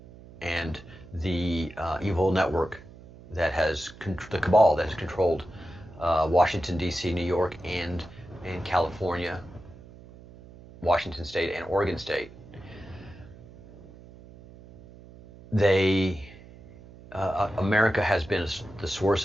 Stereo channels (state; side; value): noise; right; hum, 20 dB below the sound